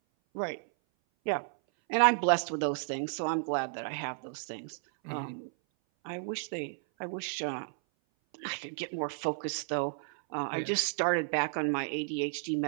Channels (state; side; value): silent; left; 56 dB below the other